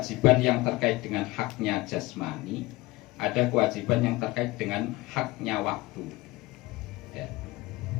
yang terkait dengan haknya jasmani, ada kewajiban yang terkait dengan haknya waktu, ya.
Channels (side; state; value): right; quieter; 20.5 dB